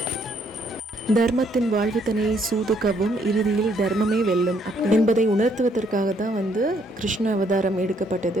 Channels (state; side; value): normal; both; correlation 0.69